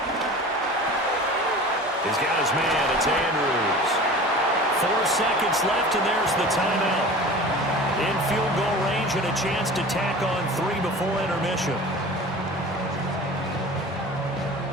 He's got his man. It's Andrews. 4 seconds left, and there's the timeout. In field goal range and a chance to tack on 3 before intermission.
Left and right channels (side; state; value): both; normal; correlation 0.38